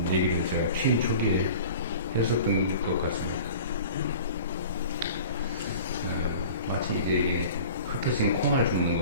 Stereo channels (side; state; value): both; inverted; correlation -0.41